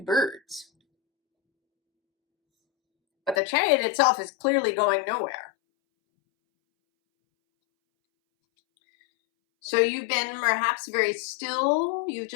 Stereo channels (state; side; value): drops out; right; at 3.4 s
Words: birds. But the chariot itself is clearly going nowhere. So you've been perhaps very still. You've